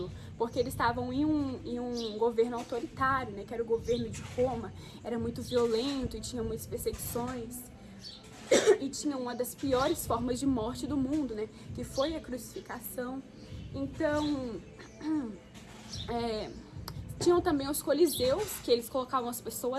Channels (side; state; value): both; identical; correlation 1.00